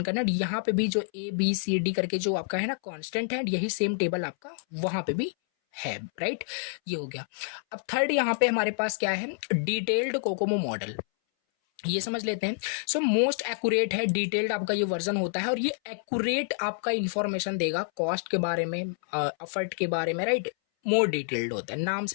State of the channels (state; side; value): silent; right; 59 dB below the other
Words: करना है। यहाँ पे भी जो ABCD करके जो आपका है ना कांस्टेंट है, यही सेम टेबल आपका वहाँ पे भी है, राइट। ये हो गया। अब थर्ड यहाँ पे हमारे पास क्या है, डिटेल्ड कोकोमो मॉडल। ये समझ लेते हैं। सो मोस्ट एक्यूरेट है, डिटेल्ड आपका ये वर्जन होता है, और ये एक्यूरेट आपका इंफॉर्मेशन देगा कॉस्ट के बारे में, एफर्ट के बारे में, राइट। मोर डिटेल्ड होता है, नाम